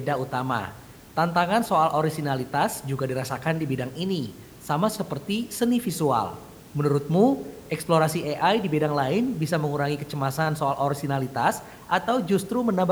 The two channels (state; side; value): identical; both; correlation 1.00